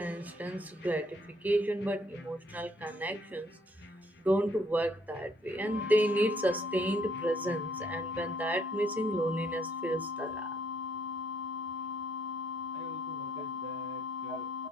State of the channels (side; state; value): both; normal; correlation 0.68